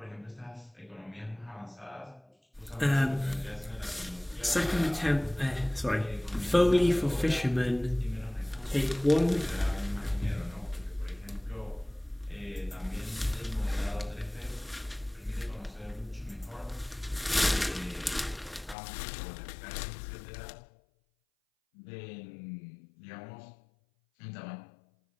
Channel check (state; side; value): drops out; right; at 18.8 s